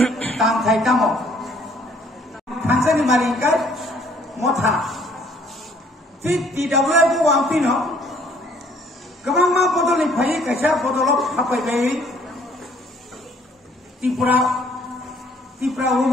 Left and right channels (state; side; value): normal; both; correlation 0.61